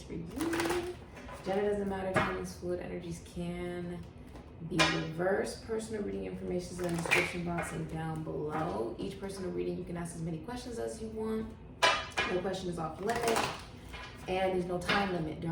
for you. Gender doesn't matter. Time is fluid. Energies can be reversed. Personal reading information is in the description box and down below. Each personal reading, you can ask as many questions as you want. No question is off limit. And there's no time limit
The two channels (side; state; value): both; identical; correlation 1.00